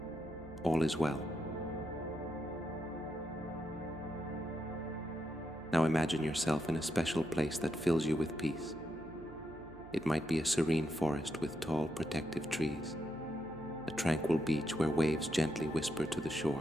All is well. Now imagine yourself in a special place that fills you with peace. It might be a serene forest with tall, protective trees, a tranquil beach where waves gently whisper to the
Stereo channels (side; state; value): right; noise; hum, 19 dB below the sound